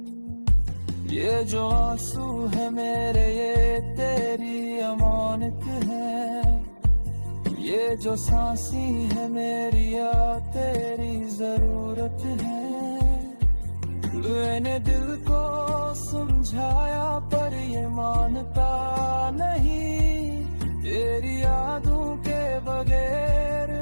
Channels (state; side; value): inverted; both; correlation -1.00